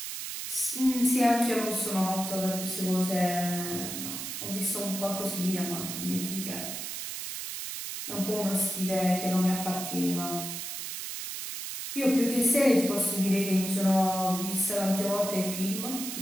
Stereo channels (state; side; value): noise; right; hiss, 6 dB below the sound